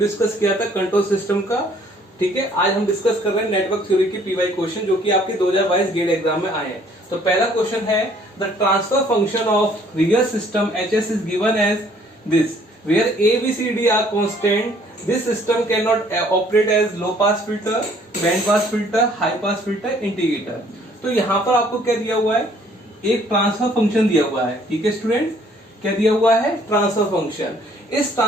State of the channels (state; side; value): normal; both; correlation 0.60